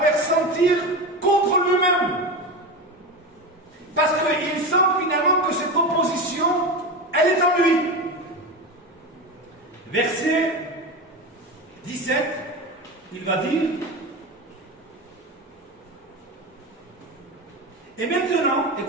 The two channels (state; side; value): normal; both; correlation 0.22